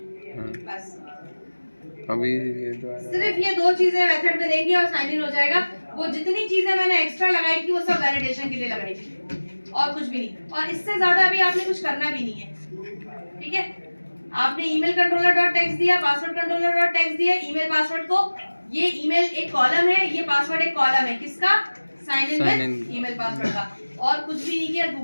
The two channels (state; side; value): inverted; both; correlation -1.00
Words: बस अभी ये तो सिर्फ ये दो चीजें मेथड में देंगे और साइन इन हो जाएगा। वो जितनी चीजें मैंने एक्स्ट्रा लगाई थी वो सब वैलिडेशन के लिए लगाई थी और कुछ भी नहीं, और इससे ज्यादा अभी आपने कुछ करना भी नहीं है। ठीक है, आपने ईमेल कंट्रोलर डॉट टेक्स्ट दिया, पासवर्ड कंट्रोलर डॉट टेक्स्ट दिया, ईमेल पासवर्ड को, ये ईमेल एक कॉलम है, ये पासवर्ड एक कॉलम है, किसका? Sign in with email password का, और कुछ भी नहीं किया,